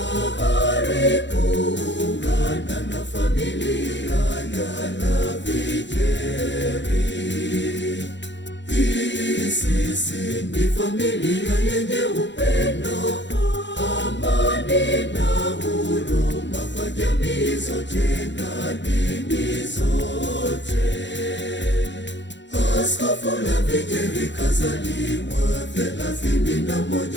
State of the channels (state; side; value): late; right; 0.52 ms